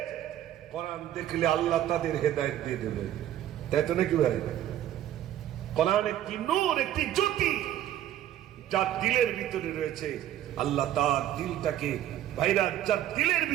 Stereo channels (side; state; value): left; quieter; 12.2 dB